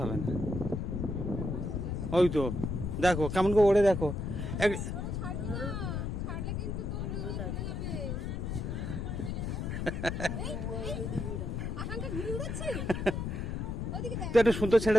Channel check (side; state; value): left; noise; rumble, 3 dB below the sound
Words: হবে না। ওই তো দেখো কেমন করে ওড়ে, দেখো তো একটু সুন্দর